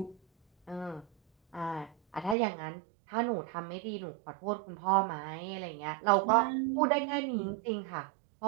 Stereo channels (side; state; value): left; drops out; at 2.4 s